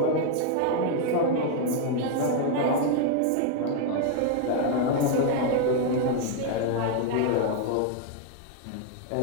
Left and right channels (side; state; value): both; different; correlation 0.00